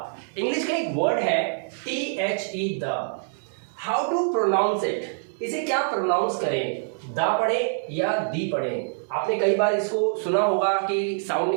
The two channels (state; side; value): silent; left; 62 dB below the other